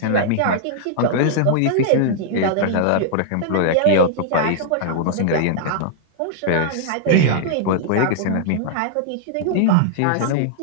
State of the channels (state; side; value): different; both; correlation -0.01